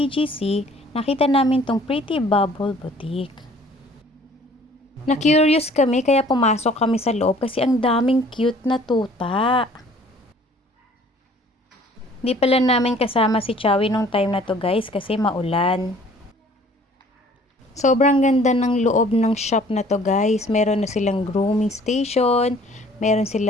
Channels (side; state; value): both; normal; correlation 0.54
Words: nakita namin tong Pretty Bubble Boutique. Na-curious kami kaya pumasok kami sa loob kasi ang daming cute na tuta. Di pala namin kasama si Chowie nung time na to guys kasi maulan. Sobrang ganda ng loob ng shop na to guys. Meron na silang grooming station, meron